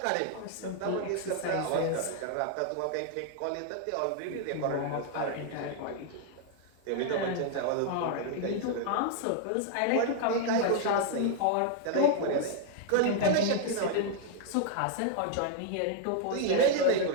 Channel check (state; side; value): different; both; correlation 0.00